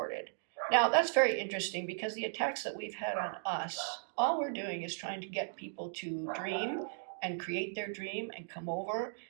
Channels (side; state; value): left; silent; digital silence